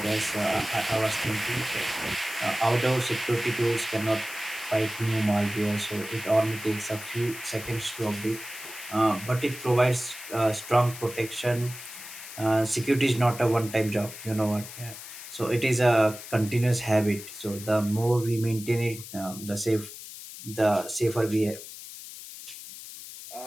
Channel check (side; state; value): left; noise; hiss, 13 dB below the sound